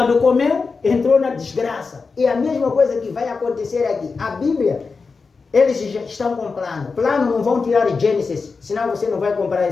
comeu, entrou na desgraça. E a mesma coisa que vai acontecer aqui. A Bíblia, eles já estão com plano. Plano não vão tirar Gênesis, senão você não vai comprar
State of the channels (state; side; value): quieter; right; 4.6 dB